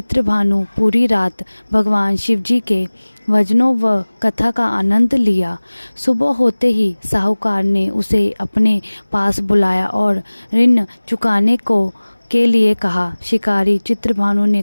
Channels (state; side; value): inverted; both; correlation -1.00